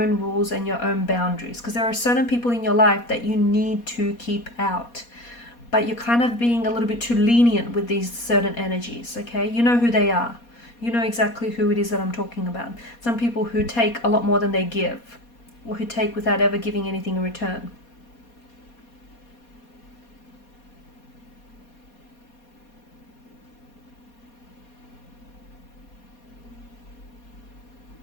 rules and your own boundaries, because there are certain people in your life that you need to keep out. But you're kind of being a little bit too lenient with these certain energies, okay? You know who they are. You know exactly who it is that I'm talking about. Some people who take a lot more than they give, or who take without ever giving anything in return.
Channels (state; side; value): late; right; 4.2 ms